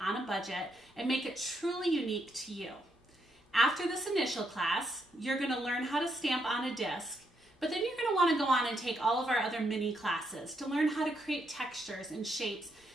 on a budget and make it truly unique to you. After this initial class, you're going to learn how to stamp on a disc. But then you're going to want to go on and take all of our other mini classes to learn how to create textures and shapes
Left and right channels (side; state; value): both; normal; correlation 0.78